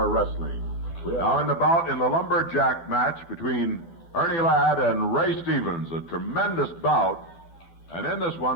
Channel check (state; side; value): late; right; 12 ms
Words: Wrestling. Now in the bout in the lumberjack match between Ernie Ladd and Ray Stevens, a tremendous bout. And in this